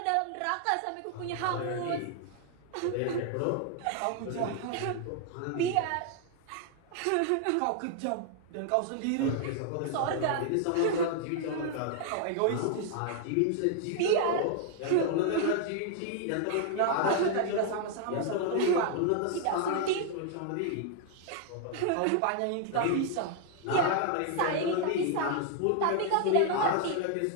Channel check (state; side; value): different; both; correlation 0.00